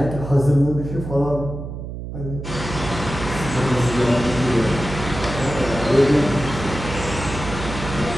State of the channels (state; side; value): noise; right; hum, 8 dB below the sound